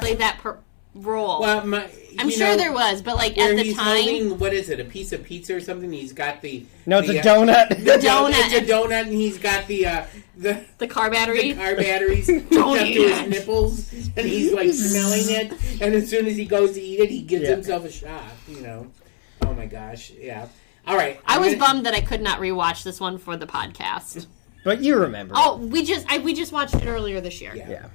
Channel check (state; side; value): silent; right; 66 dB below the other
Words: Play that role. Well, I'm sure there was, but like at the time... Holding, what is it, a piece of pizza or something? He's got the... No, it's a donut. The donut. It's a donut, and he's got the car battery. The car batteries hooked up to his nipples, and he's like smelling it, and as soon as he goes to eat it, he gives himself a shot, Oh my gosh, yeah. All right. I was bummed that I could not rewatch this one for the podcast. But you remember. Oh, we just watched it earlier this year. Yeah.